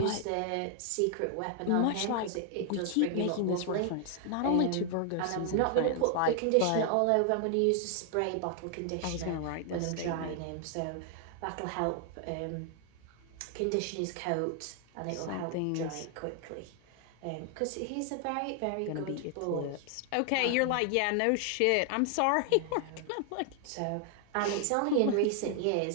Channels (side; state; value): both; different; correlation 0.00